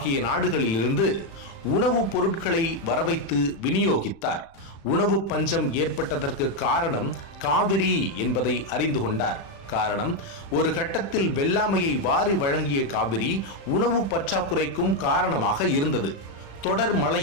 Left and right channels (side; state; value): right; late; 36 ms